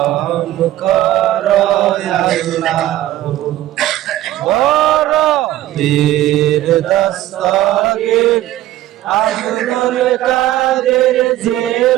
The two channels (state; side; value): quieter; left; 14.3 dB